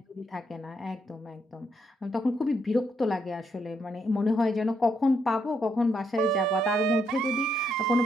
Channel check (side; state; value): both; normal; correlation 0.76